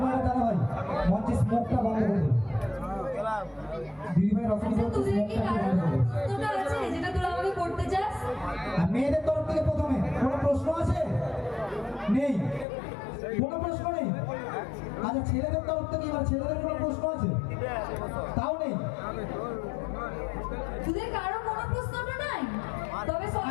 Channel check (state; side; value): drops out; right; at 12.7 s